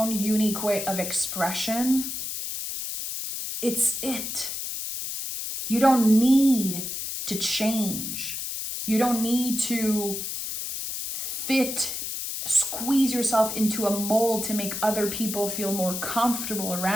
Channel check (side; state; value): left; noise; hiss, 5 dB below the sound